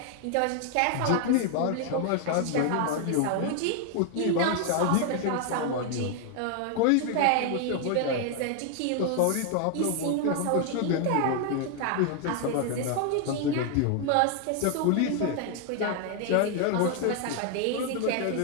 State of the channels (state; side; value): different; both; correlation 0.00